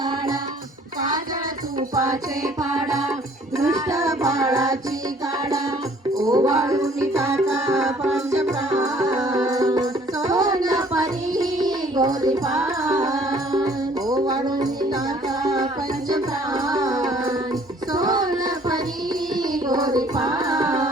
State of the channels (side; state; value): both; normal; correlation 0.57